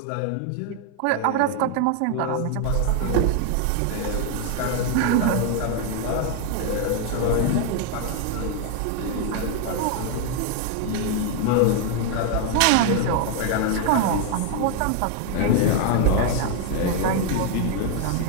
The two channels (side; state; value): both; different; correlation 0.01